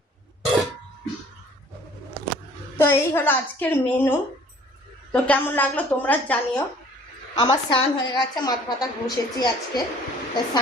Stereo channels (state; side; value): normal; both; correlation 0.54